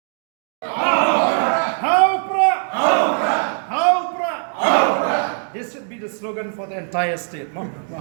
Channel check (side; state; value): left; silent; 66 dB below the other